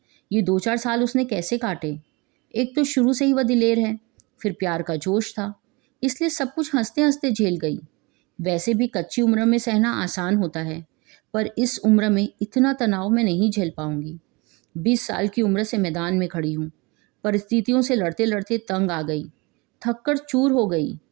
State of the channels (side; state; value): left; quieter; 26.5 dB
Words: ये 2-4 साल उसने कैसे काटे। एक तो शुरू से ही वह दिलेर है, फिर प्यार का जोश था, इसलिए सब कुछ हंसते हंसते झेल गई। वैसे भी कच्ची उम्र में सहना आसान होता है, पर इस उम्र में इतना तनाव मैं नहीं झेल पाऊंगी। 20 साल की उम्र से मैदान में खड़ी हूँ। परिस्थितियों से लड़ते लड़ते तंग आ गई, थककर चूर हो गई।